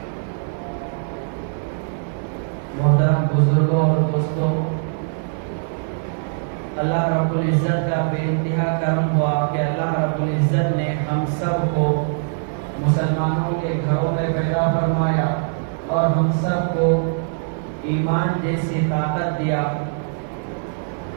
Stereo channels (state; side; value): silent; left; digital silence